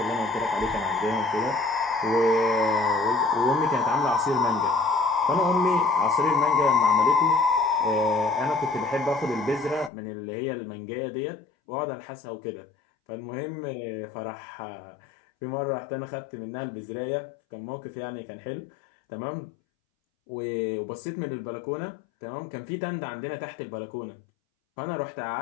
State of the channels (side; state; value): right; drops out; at 9.9 s